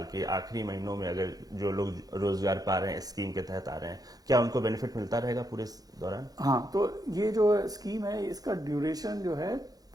के आखिरी महीनों में अगर जो लोग रोजगार पा रहे हैं स्कीम के तहत आ रहे हैं, क्या उनको बेनिफिट मिलता रहेगा पूरे दौरान? हाँ, तो ये जो स्कीम है इसका ड्यूरेशन जो है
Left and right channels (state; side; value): late; left; 0.18 ms